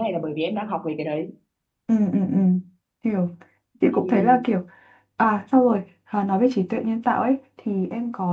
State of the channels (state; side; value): identical; both; correlation 1.00